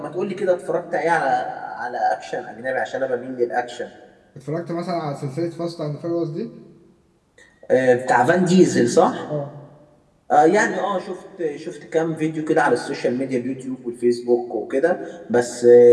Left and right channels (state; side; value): identical; both; correlation 1.00